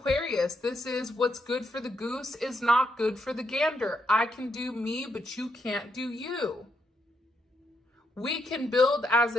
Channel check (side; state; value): both; normal; correlation 0.79